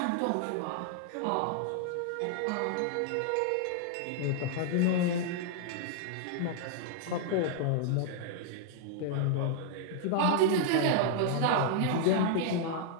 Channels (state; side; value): different; both; correlation -0.01